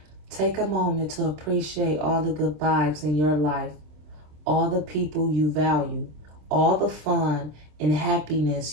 Take a moment to appreciate all the good vibes in your life, all the people you value, all the fun and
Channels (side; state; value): left; late; 27 ms